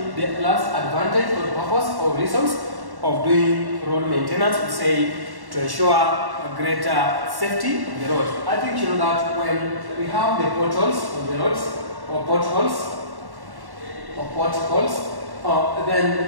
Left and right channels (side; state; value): left; late; 1.1 ms